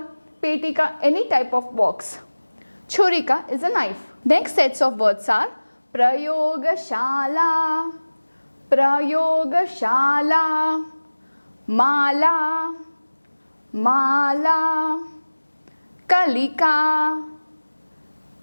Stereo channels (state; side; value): inverted; both; correlation -1.00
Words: Petika, any type of box. Churika is a knife. Next sets of words are प्रयोगशाला, प्रयोगशाला, माला, माला, कलिका,